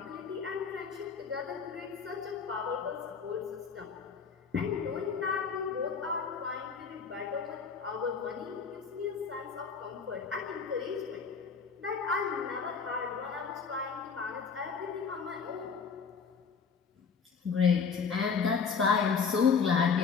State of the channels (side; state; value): right; quieter; 5.8 dB